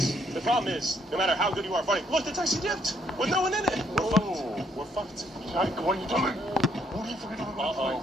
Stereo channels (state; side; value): normal; both; correlation 0.69